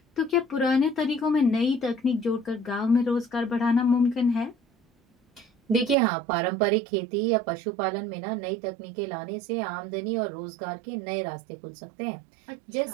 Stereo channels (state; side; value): drops out; left; at 6.0 s